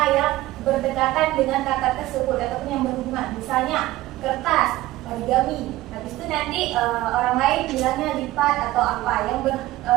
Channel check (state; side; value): quieter; left; 16.9 dB